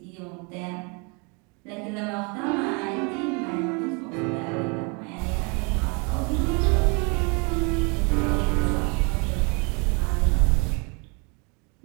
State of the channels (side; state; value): left; quieter; 32.5 dB